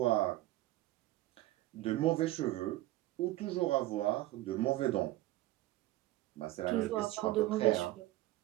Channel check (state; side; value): quieter; left; 16.9 dB